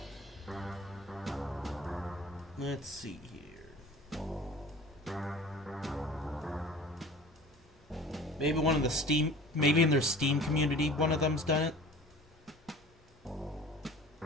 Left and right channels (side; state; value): both; normal; correlation 0.42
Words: Let's see here. Maybe one of the Steam, maybe in their Steam community, one of them's done it.